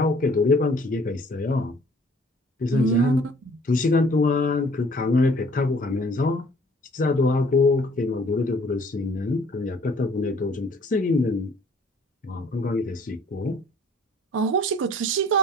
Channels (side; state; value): both; normal; correlation 0.56